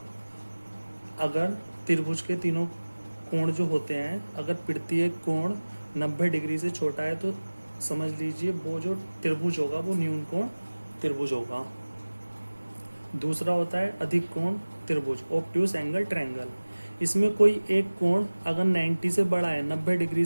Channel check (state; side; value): inverted; both; correlation -1.00